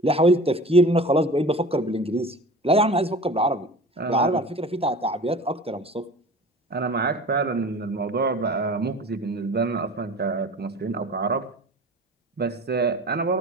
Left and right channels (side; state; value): both; normal; correlation 0.40